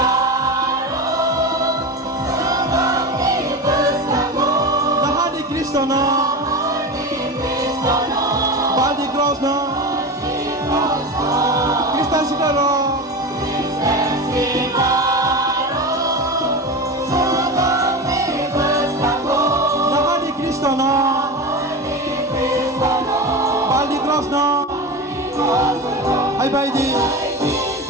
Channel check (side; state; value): both; normal; correlation 0.25